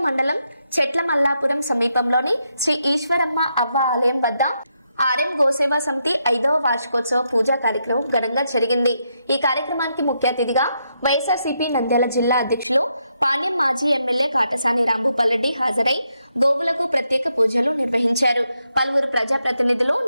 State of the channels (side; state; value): both; inverted; correlation -0.81